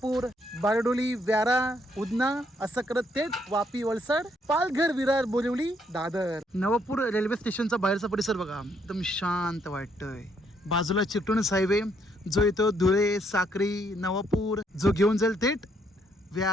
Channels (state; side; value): normal; both; correlation 0.71